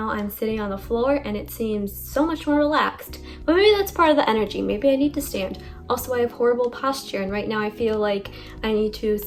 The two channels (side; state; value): both; identical; correlation 1.00